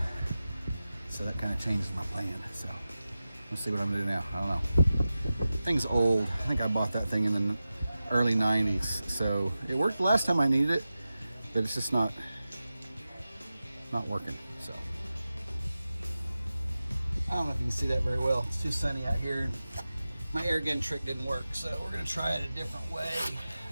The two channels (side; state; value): both; inverted; correlation -0.94